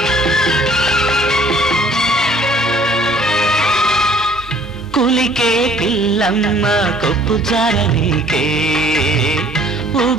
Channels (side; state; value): both; normal; correlation 0.56